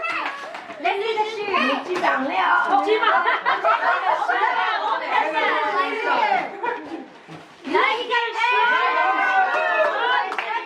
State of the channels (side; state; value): both; identical; correlation 1.00